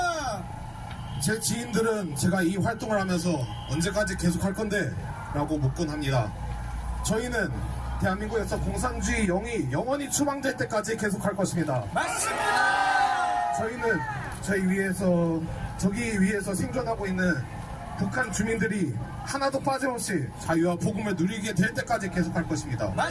제 지인들은 제가 이 활동을 하면서 언제까지 계속할 건데? 라고 묻곤 합니다. 저희는 대한민국에서 공산주의 영이 영원히 추방될 때까지 계속할 것입니다. 맞습니다. 저희는 저기 위에서 생존하고 있는 북한 주민들이 하나도 빠짐없이 자유와 복음을 누리게 될 때까지 계속할 것입니다.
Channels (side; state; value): both; identical; correlation 1.00